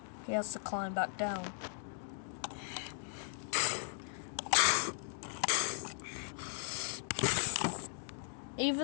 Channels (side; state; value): right; silent; digital silence